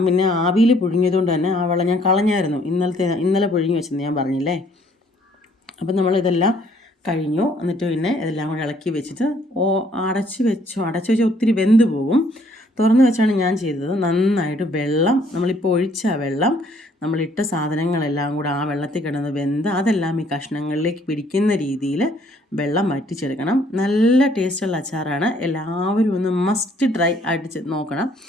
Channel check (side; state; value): both; normal; correlation 0.63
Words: പിന്നെ ആവിയിൽ പുഴുങ്ങിയതുകൊണ്ട് തന്നെ ആ വെള്ളം ഞാൻ കളഞ്ഞായിരുന്നു. ഇന്നലെ പുഴുങ്ങി വെച്ചെന്ന് ഞാൻ പറഞ്ഞില്ലേ. അപ്പം നമ്മളിതെല്ലാം കഴിഞ്ഞു. എന്നിട്ട് പിന്നെ ഇതെല്ലാം കൂടെ ഇളക്കി വെച്ചിട്ട് അടച്ച് വെച്ചാൽ ഒത്തിരി വെന്ത് പോകും. തുറന്ന് വെച്ചാണ് ഞാൻ ചെയ്തത്. നന്നായിട്ട് വെള്ളം, നമ്മളിപ്പോൾ ഒഴിച്ച വെള്ളം, നമ്മളിട്ട സാധനങ്ങളെല്ലാം കൂടെ ആ വെള്ളത്തിൽ കിടന്ന് വെന്ത് അതെല്ലാം ഈ കഷ്ണങ്ങളിലേക്ക് പിടിക്കുന്ന രീതിയിൽ വെള്ളം വറ്റിച്ചെടുക്കണം. നല്ല ടേസ്റ്റുള്ള അച്ചാറാണ്. എല്ലാവരും ഒന്ന് മസ്റ്റ് ട്രൈ ആയിട്ട് നോക്കണം.